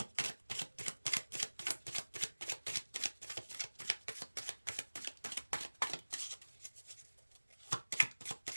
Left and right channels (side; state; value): both; inverted; correlation -1.00